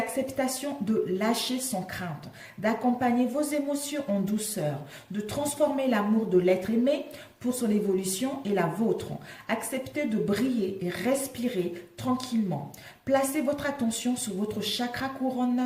de lâcher sans crainte, d'accompagner vos émotions en douceur, de transformer l'amour de l'être aimé pour son évolution et la vôtre. Acceptez de briller et respirer tranquillement. Placez votre attention sur votre chakra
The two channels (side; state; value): both; identical; correlation 1.00